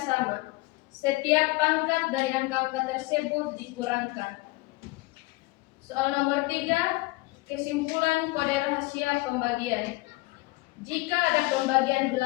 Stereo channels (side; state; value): right; quieter; 21.9 dB